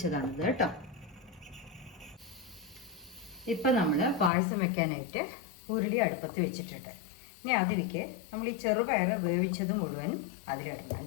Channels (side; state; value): right; drops out; at 4.3 s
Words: കേട്ടോ. ഇപ്പം നമ്മൾ പായസം വെക്കാനായിട്ട് ഉരുളി അടുപ്പത്ത് വെച്ചിട്ടുണ്ട്. ഇനി അതിലേക്ക് നമ്മൾ ഈ ചെറുപയർ വേവിച്ചത് മുഴുവൻ അതിലിടണം